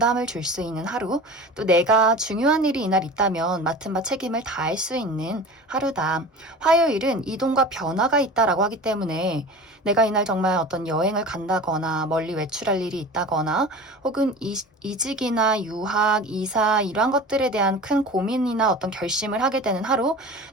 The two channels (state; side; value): normal; both; correlation 0.36